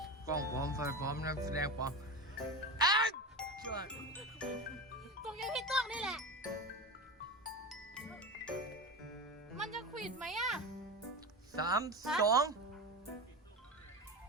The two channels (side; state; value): both; normal; correlation 0.23